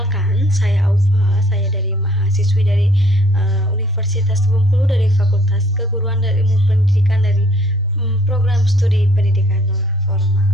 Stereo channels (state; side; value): normal; both; correlation 0.60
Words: saya Aufa. Saya dari mahasiswi dari Universitas Bengkulu dari Fakultas Keguruan dan Ilmu Pendidikan dari program studi pendidikan non formal.